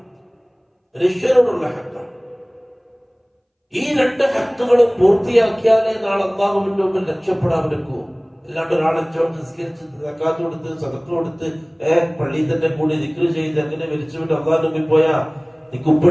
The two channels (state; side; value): identical; both; correlation 1.00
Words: ഈ രണ്ട് ഹക്കുകളും പൂർത്തിയാക്കിയാലേ നാളെ അല്ലാഹുവിന്റെ മുമ്പിൽ രക്ഷപ്പെടാൻ പറ്റൂ. അല്ലാണ്ട് ഒരാളെ നിസ്കരിച്ച് സക്കാത്ത് കൊടുത്ത് സദഖ കൊടുത്ത് പള്ളിയിൽ തന്നെ കൂടി ദിക്ർ ചെയ്ത് അങ്ങനെ മരിച്ചുവിട്ട് അല്ലാഹുവിന്റെ മുമ്പിൽ പോയാ നിനക്ക്